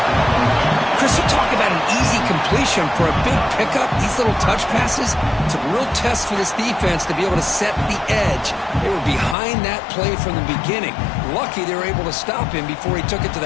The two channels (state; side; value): drops out; right; at 9.3 s